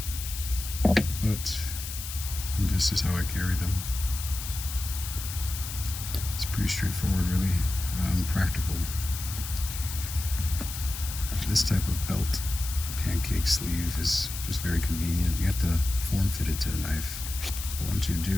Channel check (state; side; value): noise; left; hiss, 8 dB below the sound